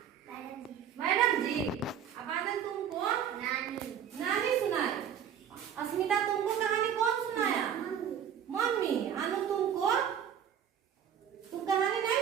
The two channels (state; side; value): quieter; left; 8.8 dB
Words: मैडम जी। अब आनंद तुमको नानी सुनाई। अस्मिता तुमको कहानी कौन सुनाया? मम्मी। अनु तुमको? तुम कहानी नहीं